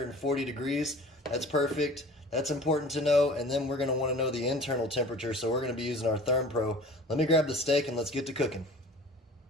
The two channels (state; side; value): normal; both; correlation 0.43